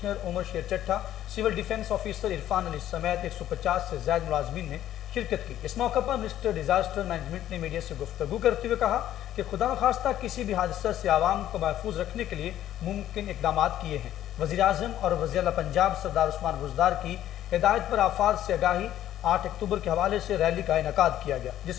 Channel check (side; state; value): right; quieter; 12.2 dB